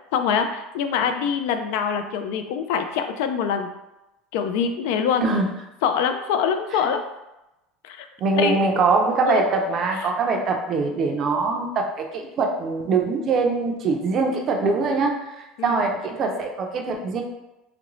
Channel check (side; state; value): both; normal; correlation 0.32